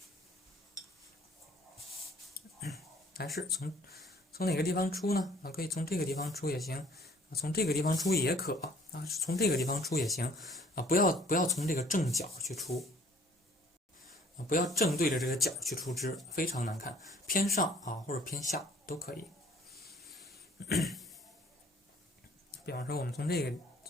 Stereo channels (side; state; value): both; normal; correlation 0.56